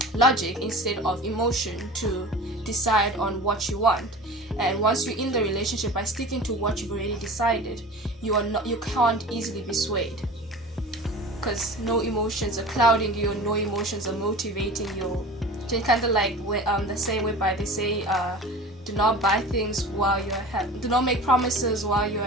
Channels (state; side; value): normal; both; correlation 0.37